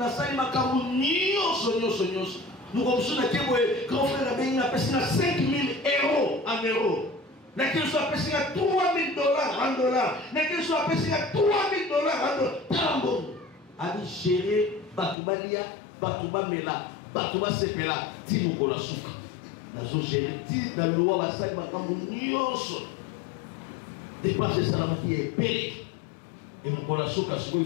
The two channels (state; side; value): drops out; right; at 15.2 s